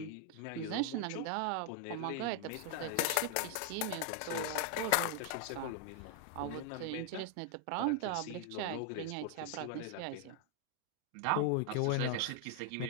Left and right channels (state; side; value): different; both; correlation 0.00